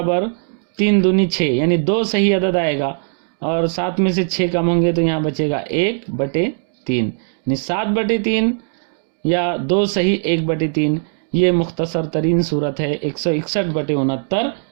3 दूनी 6, यानी 2 सही अदद आएगा और 7 में से 6 कम होंगे तो यहाँ बचेगा 1/3, यानी 7/3 या 2 सही 1/3। ये मुख्तसर तरीन सूरत है 161/69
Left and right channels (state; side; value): silent; left; digital silence